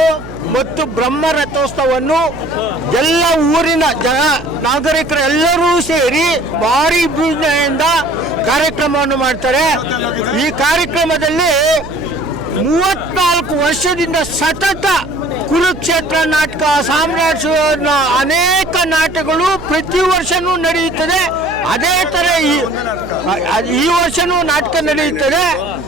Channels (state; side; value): noise; right; hum, 15 dB below the sound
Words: ಮತ್ತು ಬ್ರಹ್ಮರಥೋತ್ಸವವನ್ನು ಎಲ್ಲ ಊರಿನ ನಾಗರಿಕರು ಎಲ್ಲರೂ ಸೇರಿ ಭಾರಿ ವಿಜೃಂಭಣೆಯಿಂದ ಕಾರ್ಯಕ್ರಮವನ್ನು ಮಾಡ್ತಾರೆ. ಈ ಕಾರ್ಯಕ್ರಮದಲ್ಲಿ 34 ವರ್ಷದಿಂದ ಸತತ ಕುರುಕ್ಷೇತ್ರ ನಾಟಕ, ಸಾಮ್ರಾಜ್ಯ, ಅನೇಕ ನಾಟಕಗಳು ಪ್ರತಿ ವರ್ಷವೂ ನಡೆಯುತ್ತದೆ. ಅದೇ ಥರ ಈ ವರ್ಷನೂ ನಾಟಕ ನಡೆಯುತ್ತದೆ.